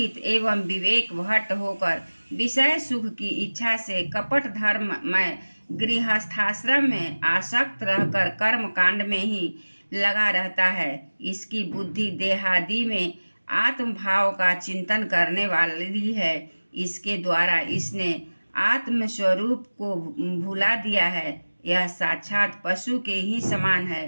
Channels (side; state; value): both; inverted; correlation -1.00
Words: एवं विवेक भट्ट होकर विषय सुख की इच्छा से कपट धर्म में गृहस्थाश्रम में आसक्त रहकर कर्म कांड में ही लगा रहता है। इसकी बुद्धि देहादि में आत्म भाव का चिंतन करने वाली है। इसके द्वारा इसने आत्म स्वरूप को भुला दिया है। यह साक्षात पशु के ही समान